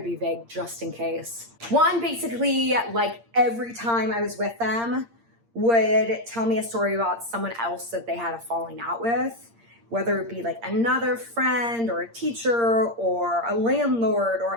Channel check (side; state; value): left; late; 8.6 ms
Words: be vague just in case. One, basically, like every time I was with them, would tell me a story about someone else that they had a falling out with, whether it be like another friend or a teacher or a landlord,